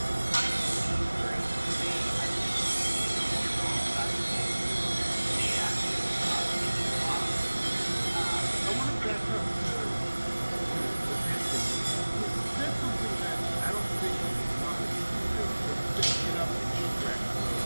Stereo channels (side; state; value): both; inverted; correlation -1.00